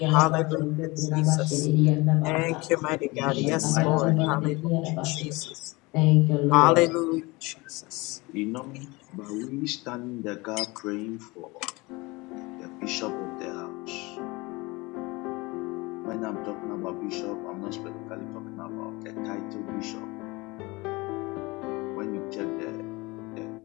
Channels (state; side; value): quieter; right; 23.9 dB